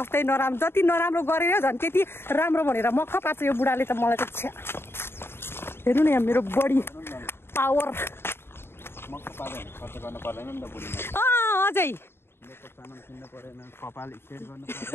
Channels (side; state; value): right; late; 0.11 ms